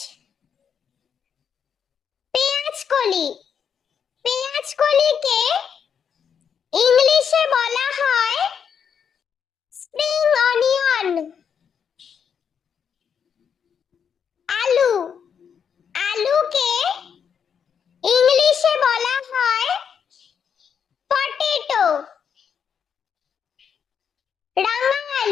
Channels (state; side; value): quieter; right; 7.3 dB